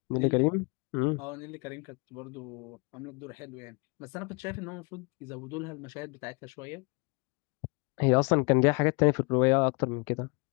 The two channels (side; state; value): right; quieter; 31.3 dB